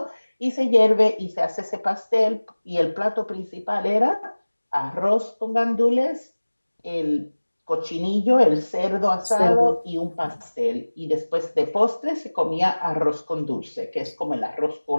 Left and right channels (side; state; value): both; inverted; correlation -1.00